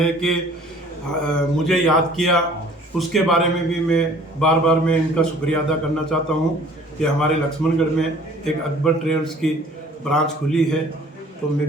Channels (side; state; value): both; normal; correlation 0.52